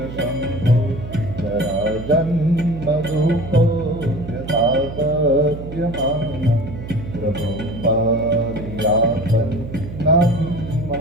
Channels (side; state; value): right; noise; hum, 10 dB below the sound